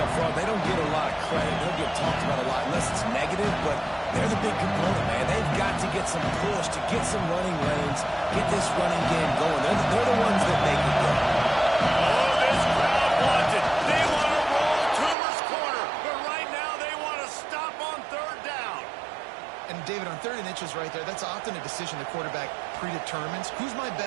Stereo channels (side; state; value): left; drops out; at 15.2 s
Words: front, they don't get a lot of credit. They don't get talked about a lot unless it's negative, but they're the big component, man. They've got to get some push, to get some running lanes, get this running game going. They're the ones that make it go. Oh, this crowd wants it. They want to roll Toomer's corner, but right now they want to stop on 3rd down. And David, on 3rd and inches right there, that's often a decision the quarterback predetermines. Who's my